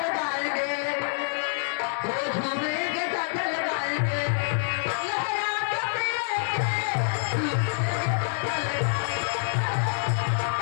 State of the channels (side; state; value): right; silent; 57 dB below the other